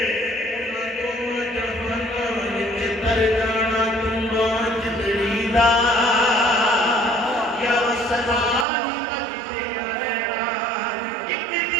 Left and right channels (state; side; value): drops out; left; at 8.7 s